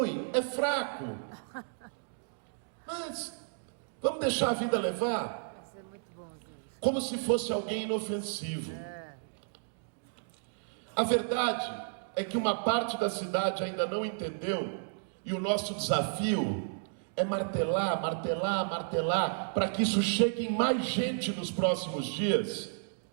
é fraco, mas vamos deixar a vida levar. Isso é muito bom, gente. Como se fosse alguém inofensivo. A verdade é que uma parte da cidade ainda não entendeu, e o nosso desafio é martelar, martelar, martelar, para que isso chegue em mais gente nos próximos dias,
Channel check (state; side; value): silent; left; digital silence